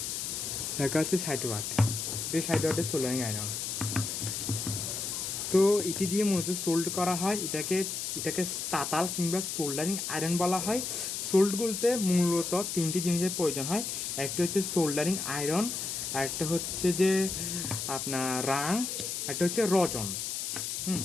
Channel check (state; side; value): noise; left; hiss, 3 dB below the sound